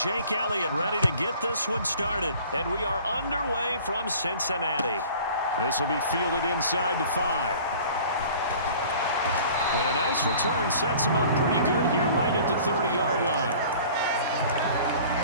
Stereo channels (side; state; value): both; inverted; correlation -0.47